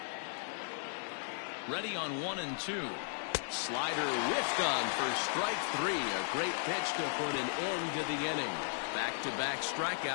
Ready on 1-2. Slider whiffed on for strike 3. A great pitch to put an end to the inning. Back-to-back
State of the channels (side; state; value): right; silent; digital silence